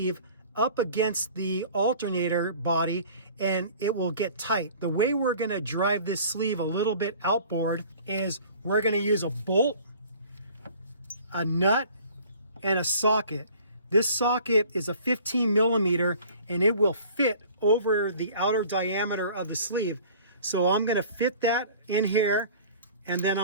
up against the alternator body and it will get tight. The way we're going to drive this sleeve a little bit outboard is we're going to use a bolt, a nut, and a socket. This socket is a 15 millimeter and it will fit over the outer diameter of the sleeve. So I'm going to fit that in here, and then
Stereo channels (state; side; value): inverted; both; correlation -0.48